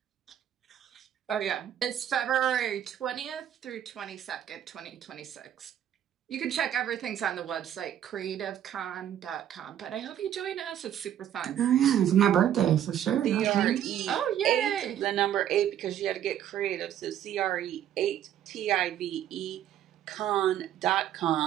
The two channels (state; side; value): quieter; left; 10.6 dB